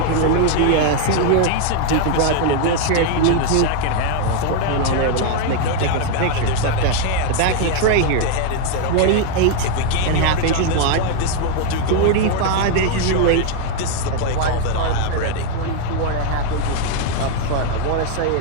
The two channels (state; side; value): different; both; correlation 0.00